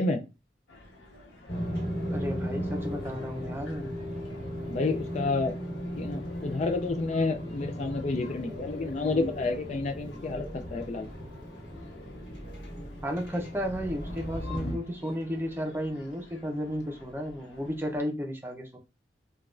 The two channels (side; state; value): both; normal; correlation 0.69